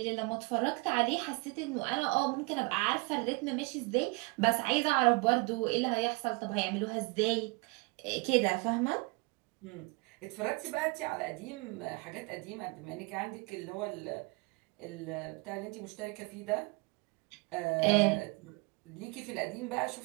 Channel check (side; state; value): left; quieter; 28.3 dB